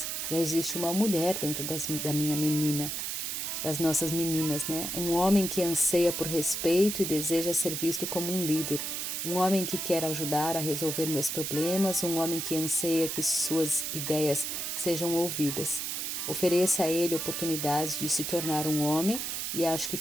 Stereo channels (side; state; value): right; noise; hiss, 3 dB below the sound